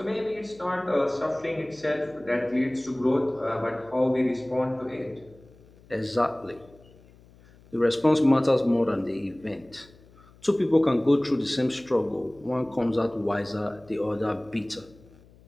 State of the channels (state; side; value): noise; left; hum, 26 dB below the sound